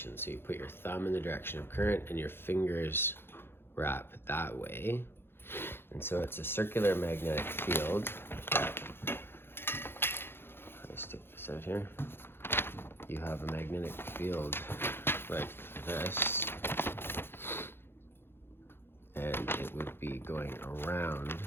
So you put your thumb in the direction of current and your fingers wrap that way. And so it's a circular magnetic field that, let me stick this out here. You have a magnetic field like this, and it would be going around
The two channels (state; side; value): late; right; 0.11 ms